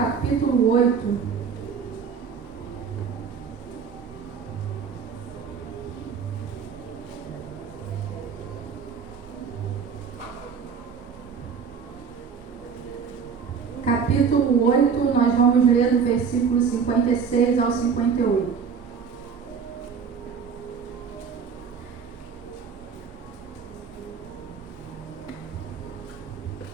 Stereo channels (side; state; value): left; quieter; 6.3 dB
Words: 8. Capítulo 8, nós vamos ler do versículo 56 ao 58.